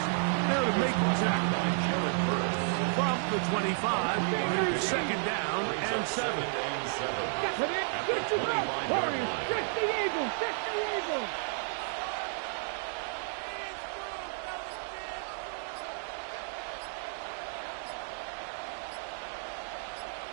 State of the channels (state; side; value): silent; left; 56 dB below the other